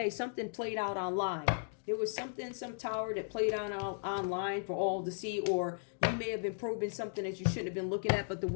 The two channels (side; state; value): right; silent; digital silence